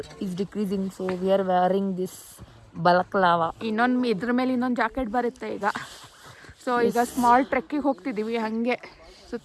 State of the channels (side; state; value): both; identical; correlation 1.00